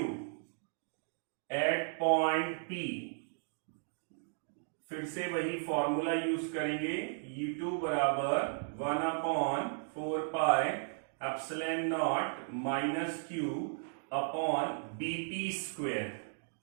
at point P। फिर से वही फॉर्मूला यूज करेंगे, E2 बराबर 1/4πε0 - Q upon BP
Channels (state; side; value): silent; left; digital silence